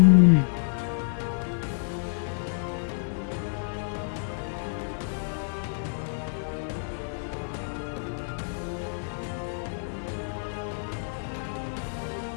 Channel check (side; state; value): right; silent; digital silence